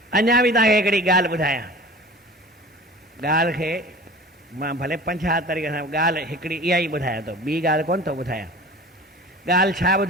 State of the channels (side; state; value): both; normal; correlation 0.40